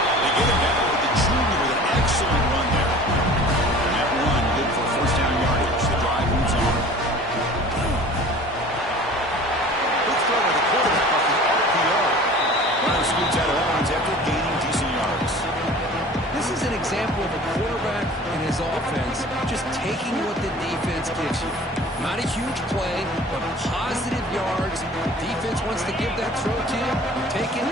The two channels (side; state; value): both; normal; correlation 0.44